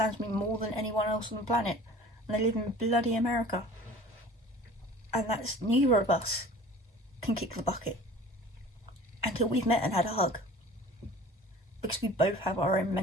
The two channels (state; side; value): normal; both; correlation 0.44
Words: me more than anyone else on the planet, and they live in bloody America. And that's neither of us. can kick the bucket until we've met and had a hug, because we both have our own